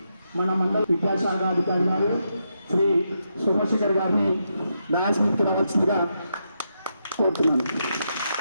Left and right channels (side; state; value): both; inverted; correlation -0.82